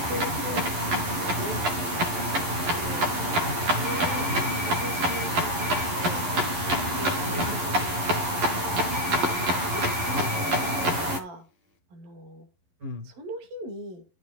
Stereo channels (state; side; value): late; left; 11 ms